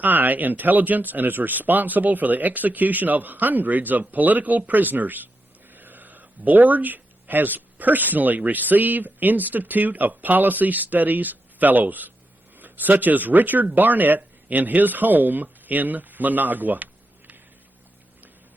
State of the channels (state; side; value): normal; both; correlation 0.86